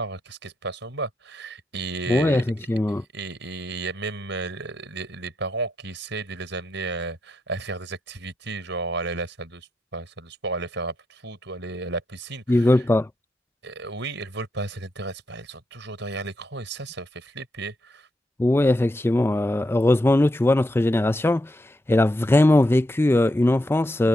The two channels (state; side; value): normal; both; correlation 0.82